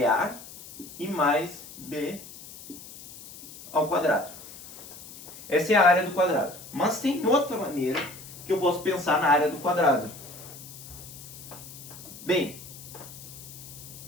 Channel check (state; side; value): noise; left; hiss, 16 dB below the sound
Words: e mais B ao quadrado. Essa é a área do quadrado. Mas tem outra maneira que eu posso pensar na área do quadrado. Bem,